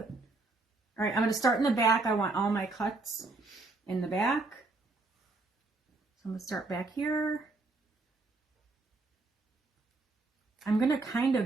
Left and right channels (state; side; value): quieter; left; 3.4 dB